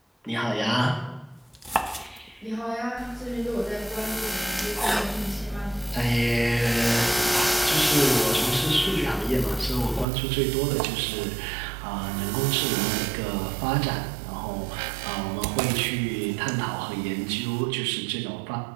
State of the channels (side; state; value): left; drops out; at 10.1 s